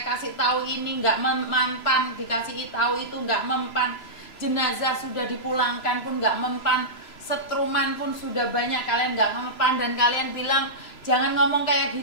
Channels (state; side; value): late; right; 3.0 ms